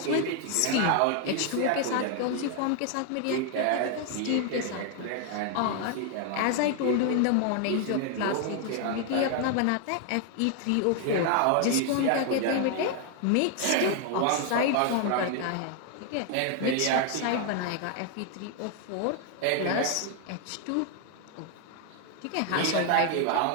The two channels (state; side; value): different; both; correlation 0.00